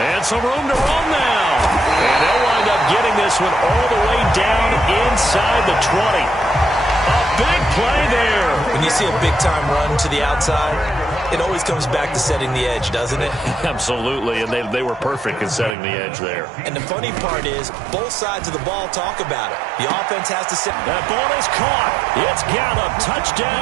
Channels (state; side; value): drops out; left; at 15.8 s